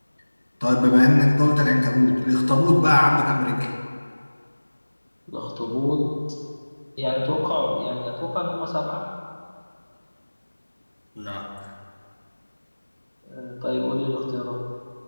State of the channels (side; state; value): both; inverted; correlation -1.00